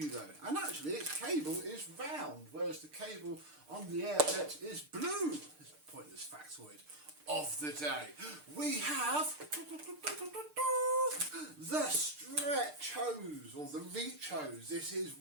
though, and actually its cable is round, whereas the cable on the Air Pet is blue. It's a pointless factoid of the day. We have the stretch hose, or the reach hose. This is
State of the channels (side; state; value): left; late; 6.6 ms